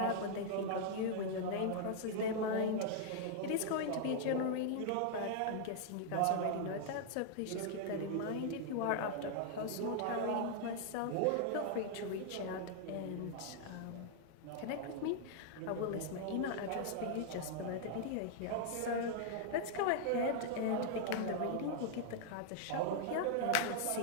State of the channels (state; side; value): different; both; correlation -0.01